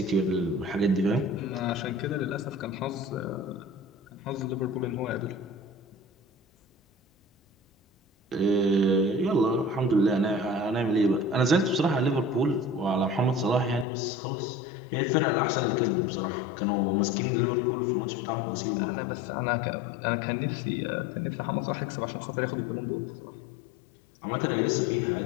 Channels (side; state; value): right; drops out; at 13.9 s